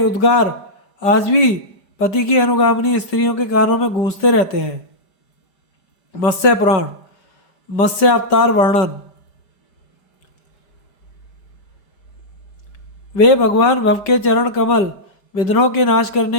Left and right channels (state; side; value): late; right; 5.0 ms